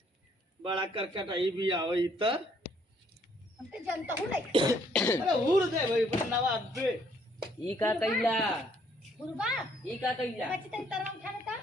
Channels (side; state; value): both; normal; correlation 0.66